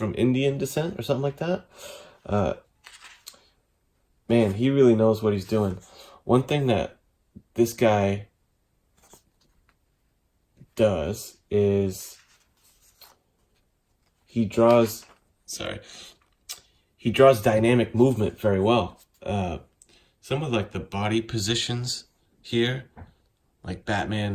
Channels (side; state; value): both; identical; correlation 1.00